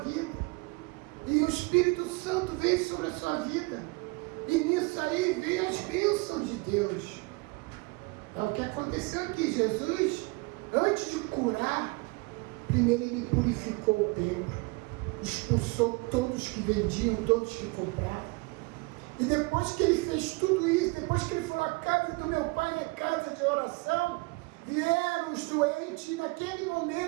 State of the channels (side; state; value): left; quieter; 26.5 dB